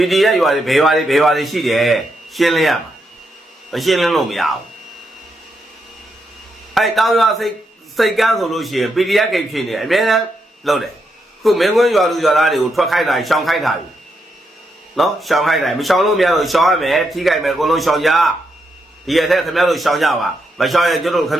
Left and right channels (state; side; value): normal; both; correlation 0.81